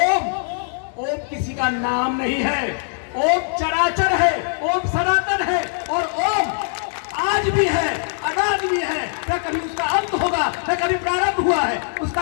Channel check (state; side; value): silent; right; digital silence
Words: किसी का नाम नहीं है, ओम चराचर है, ओम सनातन है और ओम आज भी है, अनाज भी है। न कभी उसका अंत होगा, न कभी प्रारंभ हुआ है,